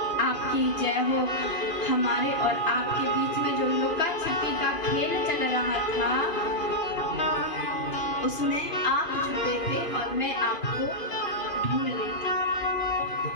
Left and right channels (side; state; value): right; late; 2.4 ms